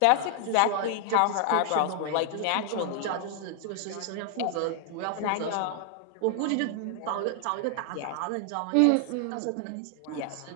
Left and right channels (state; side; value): different; both; correlation 0.00